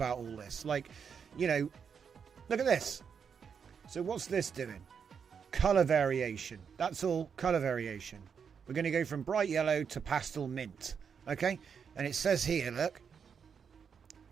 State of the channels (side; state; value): left; quieter; 6.7 dB